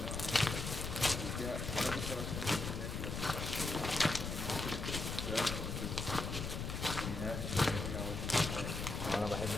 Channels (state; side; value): noise; left; rumble, 4 dB below the sound